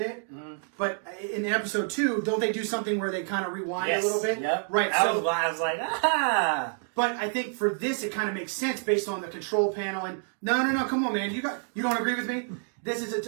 it. Mm-hmm. But in episode 2, don't they do something where they kind of rewind a little bit? Yep. Right. I was like, ah. But I think for this, it kind of makes sense based on the control panel. And no, come on, man, you don't agree with me? This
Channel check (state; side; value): silent; left; 57 dB below the other